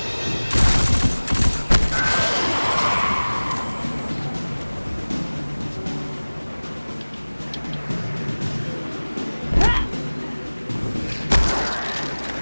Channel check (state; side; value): inverted; both; correlation -1.00